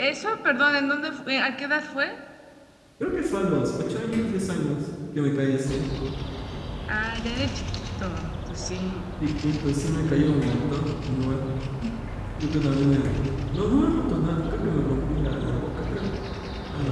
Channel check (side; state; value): both; identical; correlation 1.00